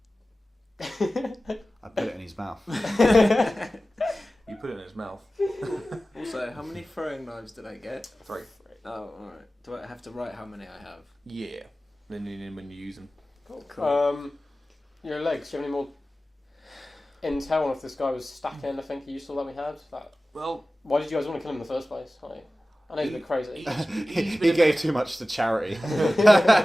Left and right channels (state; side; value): normal; both; correlation 0.96